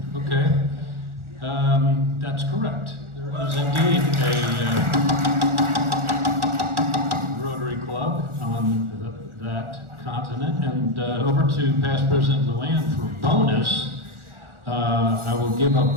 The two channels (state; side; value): late; left; 1.4 ms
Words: Okay, that's correct. There is indeed a Rotary Club on that continent. And over to Past President Luann for bonus. I will give